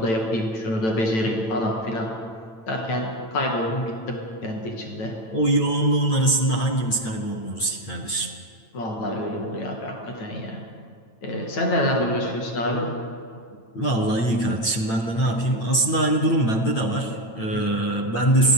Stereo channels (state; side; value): late; right; 9.0 ms